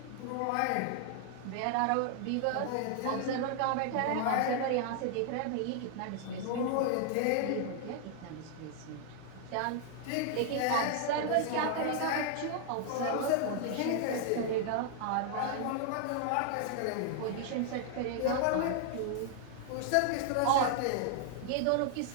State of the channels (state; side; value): different; both; correlation 0.00